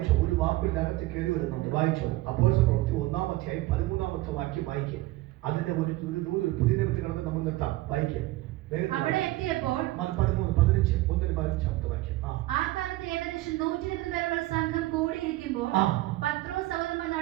ഒരു വാക്കിനകത്ത് കയറി വരുന്നുണ്ട്. വായിച്ചോ, അപ്പോസ്തല പ്രവൃത്തി 1-ാം അധ്യായം 13-ാമത്തെ വാക്യം വായിക്കുക. അതിന്റെ ഒരു പുതിയ നിമിത്തം കിടന്ന് നമ്മൾ നിർത്താം. വായിക്കുക. അവിടെ എത്തിയപ്പോൾ 13-15 വാക്യം. ആ കാലത്ത് ഏകദേശം 120 പേരുള്ള സംഘം കൂടിയിരിക്കുമ്പോൾ പത്രോസ് സഹോദരന്മാർ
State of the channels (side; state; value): left; quieter; 18.3 dB